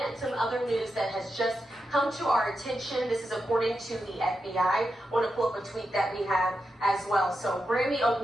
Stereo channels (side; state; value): both; normal; correlation 0.88